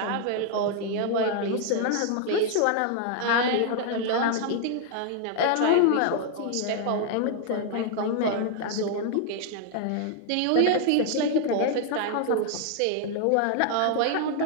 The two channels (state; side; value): different; both; correlation 0.00